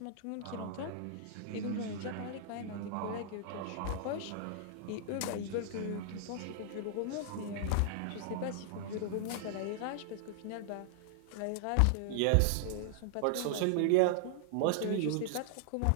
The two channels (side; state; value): both; different; correlation -0.01